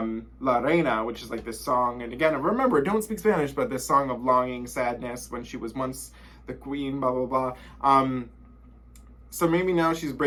Reina, which is like this song. And again, remember, don't speak Spanish, but this song of longing, sadness, when she was once the queen, blah, blah, blah. So maybe now she's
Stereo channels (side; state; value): both; identical; correlation 1.00